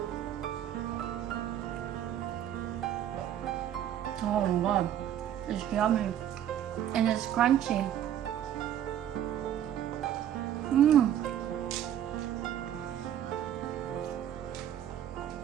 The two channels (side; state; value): left; quieter; 10.7 dB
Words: Oh my god, it's yummy and it's crunchy. Mmm.